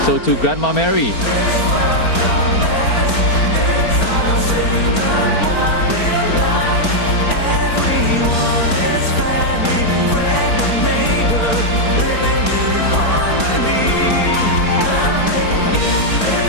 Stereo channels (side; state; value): right; late; 4.4 ms